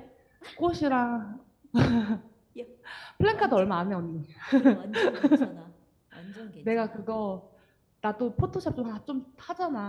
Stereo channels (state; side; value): identical; both; correlation 1.00